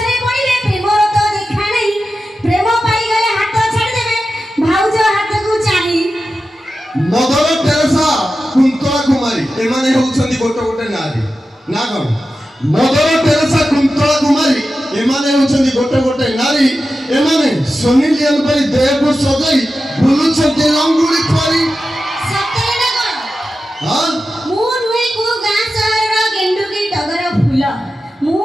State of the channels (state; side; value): normal; both; correlation 0.92